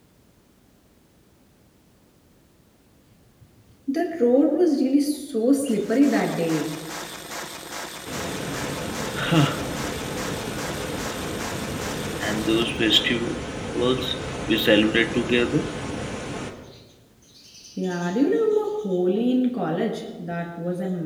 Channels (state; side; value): identical; both; correlation 1.00